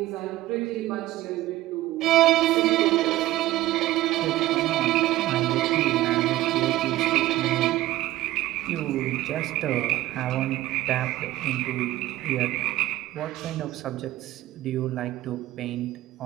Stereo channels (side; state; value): left; quieter; 15.9 dB